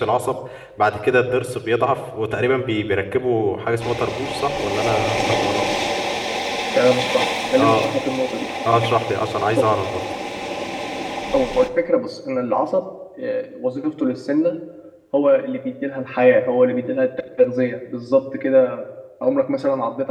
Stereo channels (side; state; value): both; identical; correlation 1.00